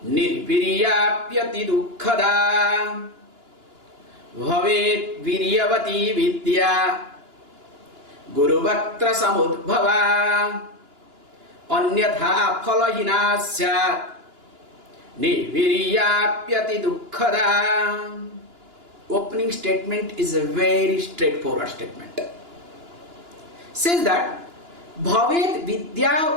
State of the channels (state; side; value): late; left; 2.9 ms